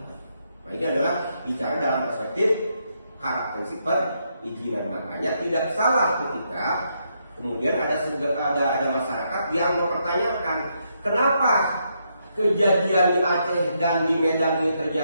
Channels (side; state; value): both; inverted; correlation -0.78